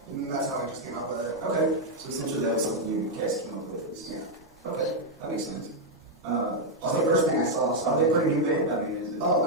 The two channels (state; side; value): normal; both; correlation -0.01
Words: And that's how I just came up with it. Okay. So essentially that was something you guys came up with. Yeah. Okay. That makes sense. That's the first thing I saw. So Are they pretty new band? I mean, is it? Oh,